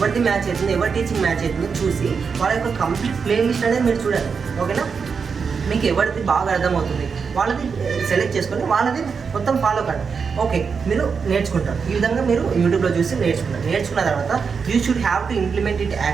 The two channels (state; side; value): quieter; left; 5.7 dB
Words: మ్యాచ్ అవుతుంది, ఎవరి టీచింగ్ మ్యాచ్ అవుతుందో చూసి వాళ్ళ యొక్క కంప్లీట్ ప్లేలిస్ట్ అనేది మీరు చూడాలి, ఓకేనా. మీకు ఎవరిది బాగా అర్థమవుతుంది వాళ్ళది సెలెక్ట్ చేసుకొని వాళ్ళది మొత్తం ఫాలో కండి. ఓకే, మీరు నేర్చుకుంటారు. ఈ విధంగా మీరు యూట్యూబ్లో చూసి నేర్చుకున్న తర్వాత you should have to implement it